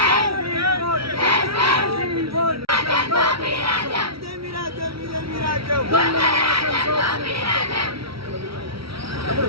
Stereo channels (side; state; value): left; late; 0.75 ms